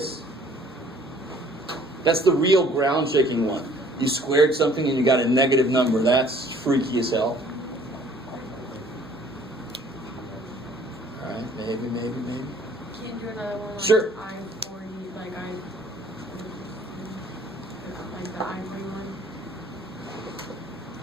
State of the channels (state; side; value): normal; both; correlation 0.56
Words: That's the real ground shaking one. You squared something and you got a negative number. That's freaky as hell. Alright, maybe. Can you do another one? Like Sure. I-40, like the I-41?